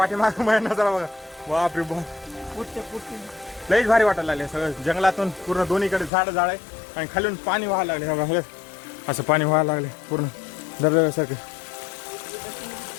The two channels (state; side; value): drops out; right; at 6.1 s